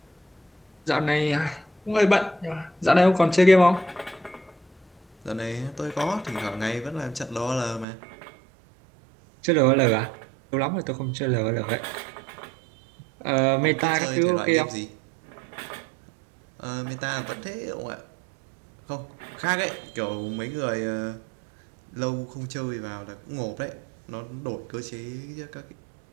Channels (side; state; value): left; drops out; at 7.9 s